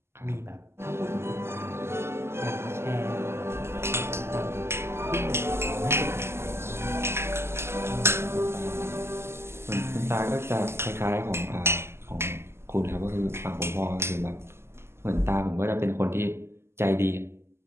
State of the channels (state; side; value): late; left; 0.12 ms